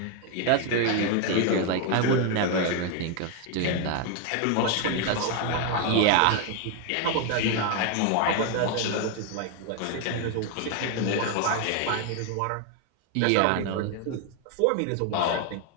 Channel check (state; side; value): different; both; correlation 0.01